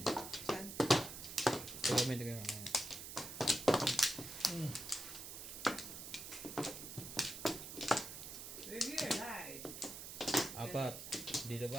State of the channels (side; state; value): right; noise; hiss, 9 dB below the sound